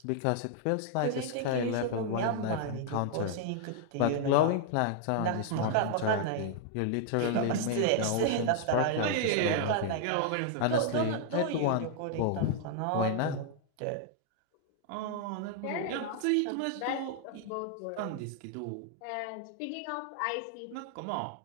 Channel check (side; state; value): both; different; correlation 0.00